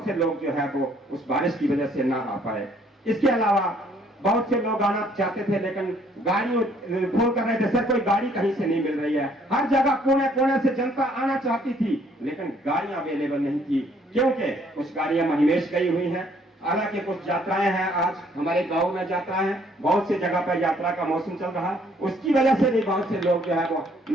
से लोग जो है वो उस बारिश की वजह से ना आ पाए। इसके अलावा बहुत से लोग आना चाहते थे लेकिन गाड़ी फोन कर रहे थे, सर कोई गाड़ी कहीं से नहीं मिल रही है। हर जगह कोने कोने से जनता आना चाहती थी लेकिन गाड़ियां अवेलेबल नहीं थी, क्योंकि कुछ गाड़ियां महिमेश गई हुई हैं। हालांकि कुछ यात्राएं हैं, आज हमारे गांव में यात्राएं हैं, बहुत सी जगह पर यात्रा का मौसम चल रहा है, उसकी वजह से भी बहुत से लोग जो है वो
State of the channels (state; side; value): normal; both; correlation 0.63